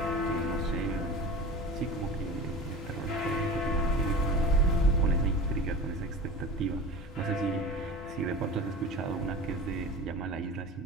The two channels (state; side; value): normal; both; correlation 0.34